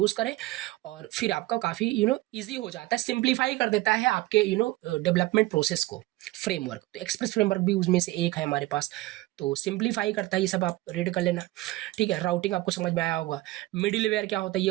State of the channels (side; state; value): left; quieter; 18.6 dB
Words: करें, और फिर आपका काफी इजी हो जाता है, सिंप्लीफाई कर देता है आपके डेवलपमेंट प्रोसेस को फ्रेमवर्क। तो एक्सप्रेस फ्रेमवर्क भी उसमें से एक है हमारे पास, तो सिंप्लीफाई करता है। ये सब आप रीड कर लेना, ठीक है। राउटिंग आपको समझ में आया होगा। मिडिल वेयर क्या होता है ये